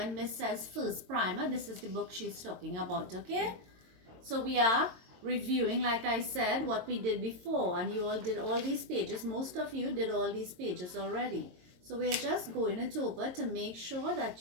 Miss says first primer, this is the book she's talking about, okay? So we are reviewing, like I said, what we did before, and you all did all these pages. Most of you did all these pages already. So we are just going it over to make sure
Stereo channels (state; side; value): late; left; 22 ms